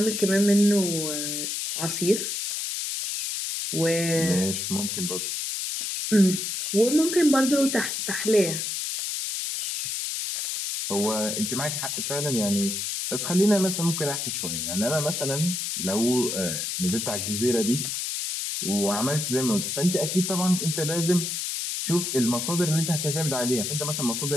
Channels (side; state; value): left; noise; hiss, 2 dB below the sound